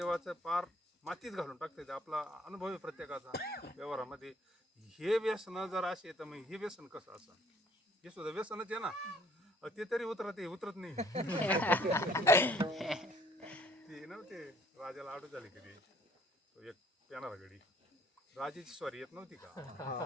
पार मातीत घालून टाकते. आपला अनुभव आहे प्रत्येकाचा व्यवहारामध्ये. हे व्यसन जर असे तर मग हे व्यसन कसं असं, हे सुद्धा व्यसनच आहे ना. ते तरी उतरत नाही. ते नव्हते राजाला आडू झाली कधी, तो एक पेनारा गडी, राजाची स्वारी येत नव्हती का,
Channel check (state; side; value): normal; both; correlation 0.60